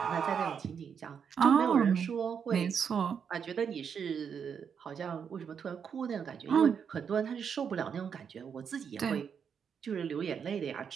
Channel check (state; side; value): quieter; left; 7.1 dB